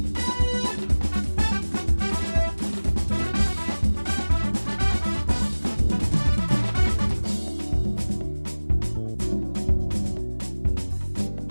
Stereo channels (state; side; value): inverted; both; correlation -1.00